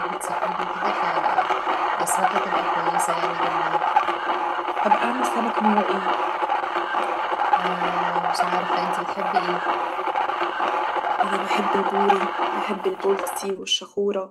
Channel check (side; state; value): both; identical; correlation 1.00